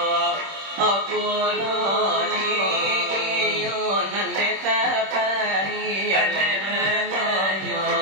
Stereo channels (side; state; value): left; late; 26 ms